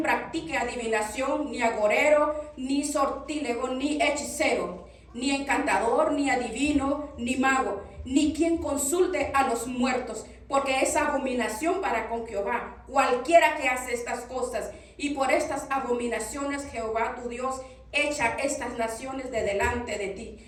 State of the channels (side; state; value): both; identical; correlation 1.00